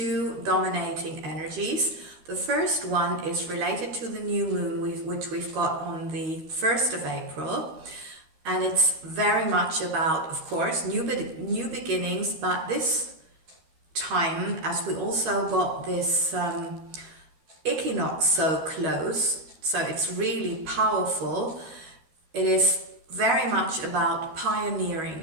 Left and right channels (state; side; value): late; left; 13 ms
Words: dominating energies. The first one is related to the new moon which we've got on the 1st of April. And it's very much about, of course, new beginnings, but this time, as we also got this equinox so close, so it's really powerful, it is very much about